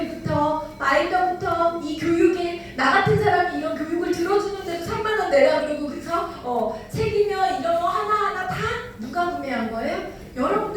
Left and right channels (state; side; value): identical; both; correlation 1.00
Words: 마일더부터 이 교육에 나 같은 사람이 이런 교육을 들어주는데도 3만 원 내라 그러고 그래서 책이며 이런 거 하나하나 다 누가 구매한 거예요?